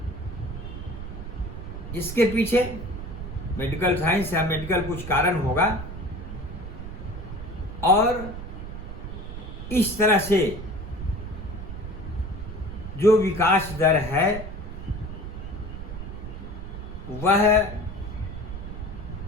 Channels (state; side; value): noise; right; rumble, 9 dB below the sound